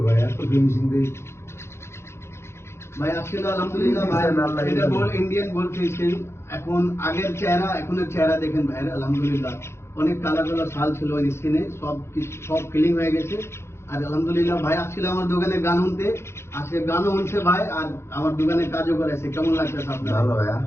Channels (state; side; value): late; right; 0.13 ms